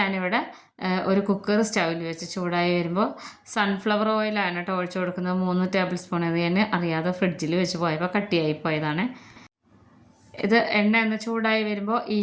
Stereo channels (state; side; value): identical; both; correlation 1.00